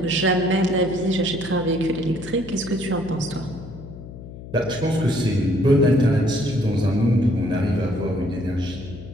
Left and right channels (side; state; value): left; noise; hum, 14 dB below the sound